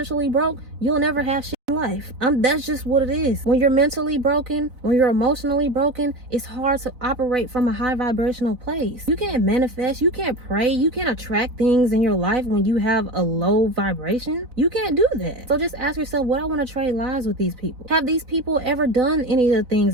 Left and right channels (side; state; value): left; late; 4.0 ms